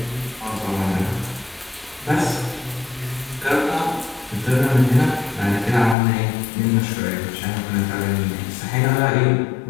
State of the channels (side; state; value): right; drops out; at 6.0 s